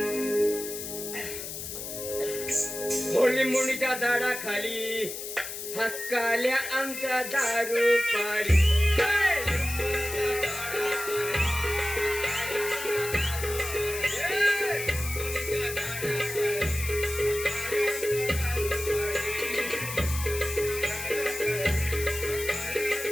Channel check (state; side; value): noise; left; hiss, 7 dB below the sound